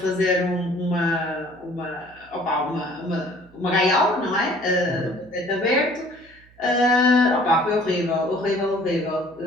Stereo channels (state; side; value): noise; right; hum, 27 dB below the sound